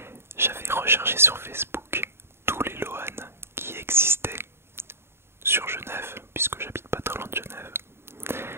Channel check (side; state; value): left; late; 0.12 ms